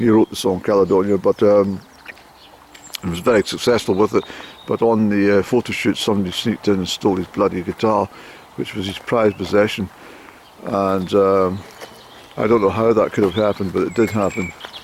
wrote the song Caledonia, but he was very successful with it. But on the photo shoot, somebody sneaked in and stole his bloody guitar, which was his prized possession. And I don't know how that could have happened, but it did happen.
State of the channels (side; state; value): both; identical; correlation 1.00